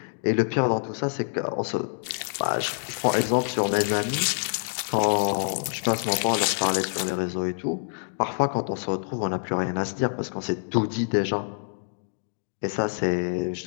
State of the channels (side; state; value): right; silent; digital silence